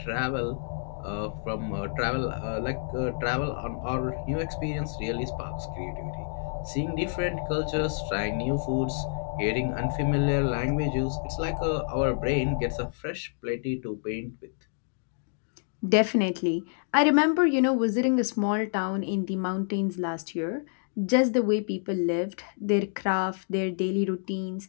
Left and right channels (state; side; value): silent; right; digital silence